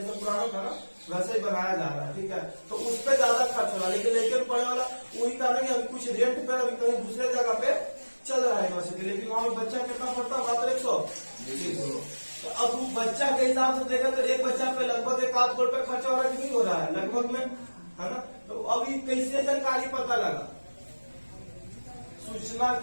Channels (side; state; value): both; inverted; correlation -1.00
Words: पुराना था ना वैसे ही बनाया जा रहा है, ठीक है। तो उस पर ज्यादा खर्च हो रहा है, लेकिन लेकर पढ़ने वाला वही था ना कि अभी कुछ रेंट पे अभी कहीं दूसरे जगह पे चल रहा है यूनिवर्सिटी, लेकिन वहाँ पे बच्चा कितना पढ़ता है, मात्र 100। तो अब वो बच्चा के हिसाब से देखा तो एक बच्चा पे लगभग 1 करोड़ रुपए खर्चा हो रहा है कि नहीं हो रहा है, लगभग में, है ना। तो अभी कैसे जानकारी पता लगा, सूचना